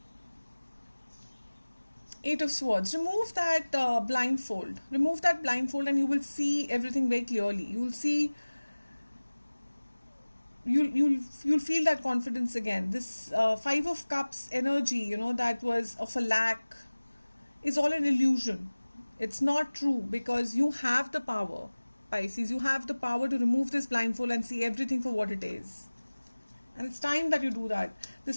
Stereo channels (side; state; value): both; inverted; correlation -1.00